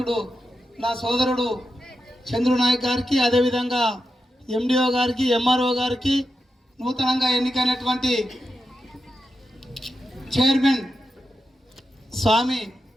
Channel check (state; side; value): normal; both; correlation 0.89